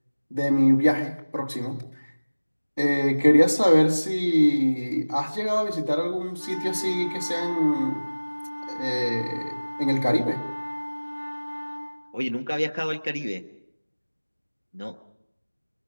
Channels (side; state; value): both; inverted; correlation -1.00